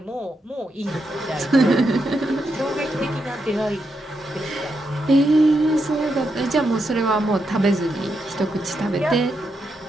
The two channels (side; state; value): both; normal; correlation 0.83